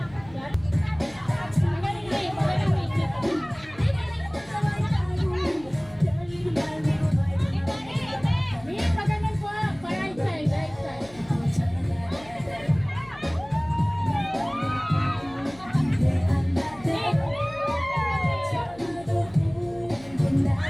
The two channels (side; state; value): left; noise; hum, 22 dB below the sound